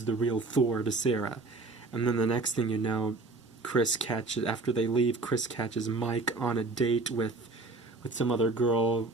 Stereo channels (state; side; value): quieter; left; 3.3 dB